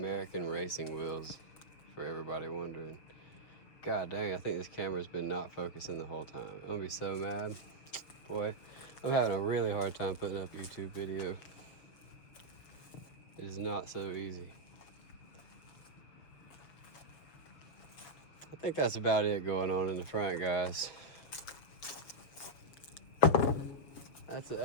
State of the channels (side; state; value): right; late; 6.8 ms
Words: racing wheels, for everybody wondering. God dang, I think this camera's been not focusing the whole time. I'm gonna be so mad. Boy, I'm having a really hard time putting up YouTube video. It is not so easy. I think that's about it going on in the front, guys.